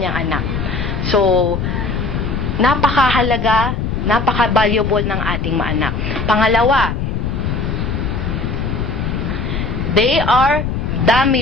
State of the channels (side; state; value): left; noise; rumble, 2 dB below the sound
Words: niyang anak. So, napakahalaga, napaka-valuable ng ating mga anak. Pangalawa, they are